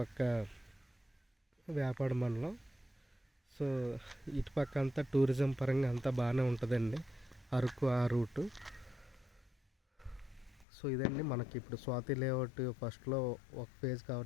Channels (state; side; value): drops out; right; at 10.7 s